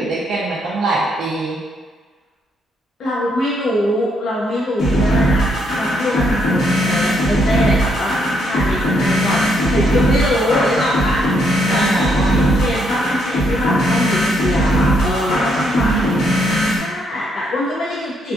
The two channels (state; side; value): normal; both; correlation 0.74